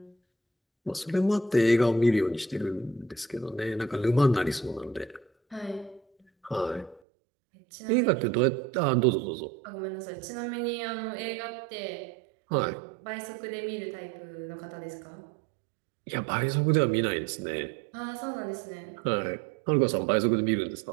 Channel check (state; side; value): drops out; left; at 7.0 s